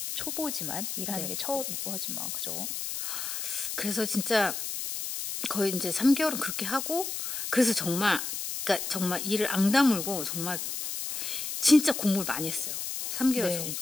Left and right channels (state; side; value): noise; left; hiss, 4 dB below the sound